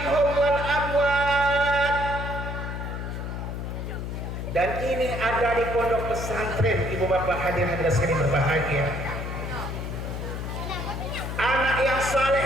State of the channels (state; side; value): noise; left; hum, 5 dB below the sound